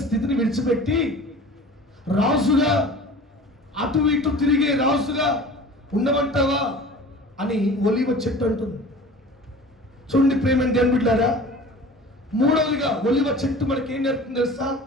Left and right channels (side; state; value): both; normal; correlation 0.41